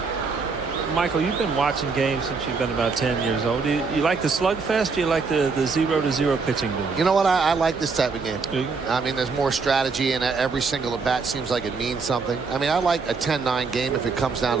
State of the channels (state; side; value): quieter; left; 4.7 dB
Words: Michael, you've been watching games since you've been about 10 years old. Do you like the slugfest? Do you like the 0-0 pitching duel? You know what? I like this type of game. I mean, there's more strategy, and every single at bat seems like it means something. I mean, I like a 10-9 game if it comes down